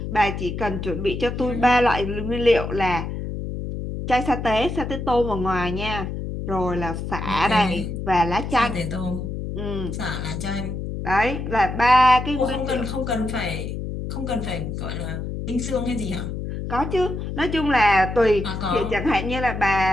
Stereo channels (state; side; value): noise; left; hum, 5 dB below the sound